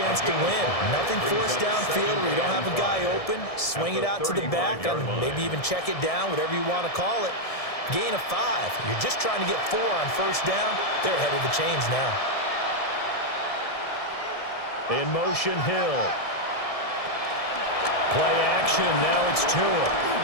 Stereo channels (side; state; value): right; late; 1.7 ms